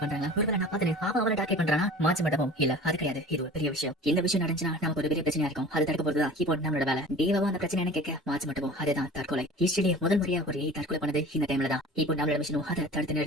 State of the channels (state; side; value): normal; both; correlation 0.41